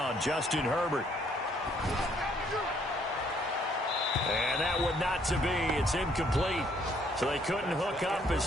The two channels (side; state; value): both; normal; correlation 0.66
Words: Justin Herbert. And that would not to be. It's incomplete. So they couldn't hook up